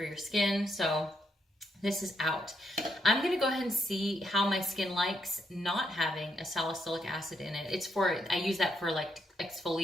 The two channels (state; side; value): normal; both; correlation 0.77